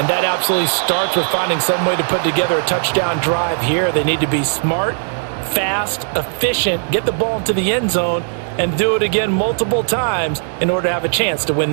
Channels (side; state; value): left; silent; digital silence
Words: that absolutely starts with finding some way to put together a touchdown drive here. They need to be smart, fast, efficient, get the ball into the end zone, and do it again multiple times in order to have a chance to win